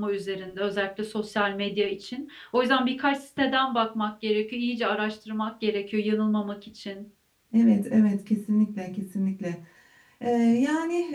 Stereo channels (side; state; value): both; identical; correlation 1.00